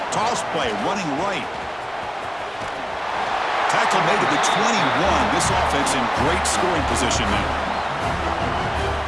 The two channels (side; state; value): both; identical; correlation 1.00